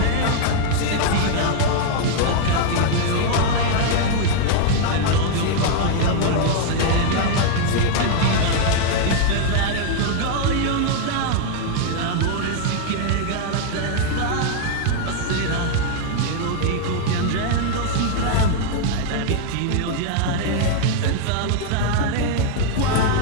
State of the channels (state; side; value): different; both; correlation 0.00